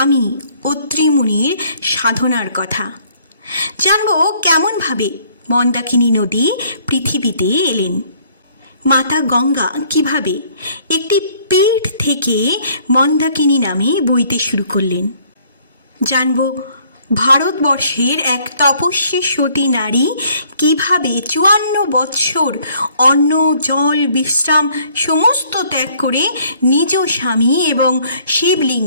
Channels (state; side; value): inverted; both; correlation -0.61